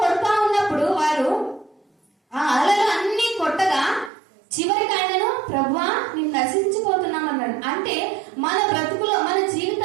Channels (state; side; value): drops out; left; at 4.1 s